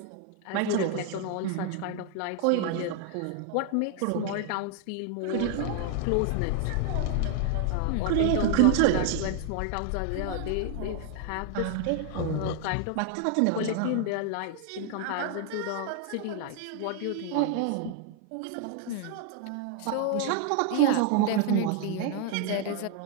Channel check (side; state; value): both; different; correlation 0.00